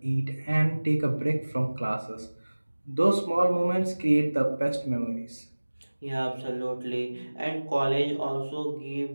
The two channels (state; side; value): inverted; both; correlation -1.00